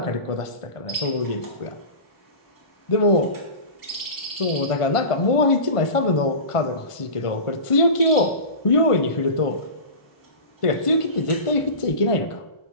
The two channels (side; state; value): right; late; 1.5 ms